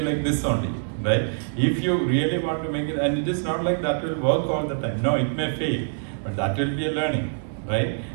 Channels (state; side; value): silent; left; digital silence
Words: like this only, right? If you really want to make it, and it is not like that will work all the time. No, it may fail, but that will be a learning, right?